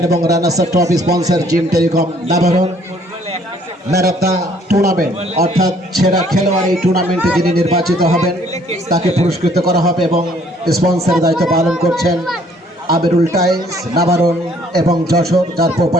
এবং runners up trophy sponsor Jim telecom Nabaran, man of the tournament অর্থাৎ সেরা খেলোয়াড় এই টুর্নামেন্টে যিনি নির্বাচিত হবেন তাকে পুরস্কৃত করা হবে এবং স্পন্সরের দায়িত্ব পালন করছেন আবিরুল টাইলস নাবারণ এবং যশোর, যার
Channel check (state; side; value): normal; both; correlation 0.61